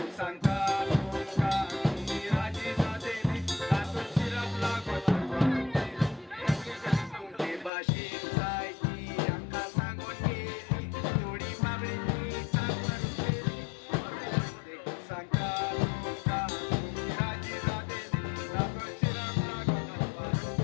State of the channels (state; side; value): drops out; right; at 7.7 s